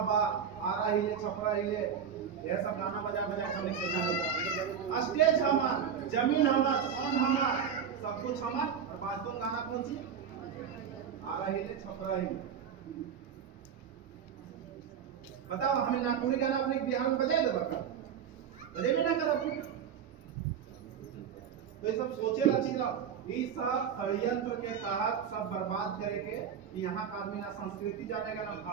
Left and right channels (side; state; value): left; quieter; 7.8 dB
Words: बा आरा हिले छपरा हिले यह सब गाना बजा हमने सीखा होगा। स्टेज हमार, जमीन हमार, साउंड हमार, सब कुछ हमार, और बाजतों गाना कौन सी? आरा हिले छपरा हिले। बताओ हमें नागपुरी गाना अपने बिहार में बजाए दो, बता बजे में ना कर। तो ये सब सोचे रची ना, ये सब षड्यंत्र के तहत सब बर्बाद करेंगे। यहाँ का आदमी ना संस्कृति जानेगा, ना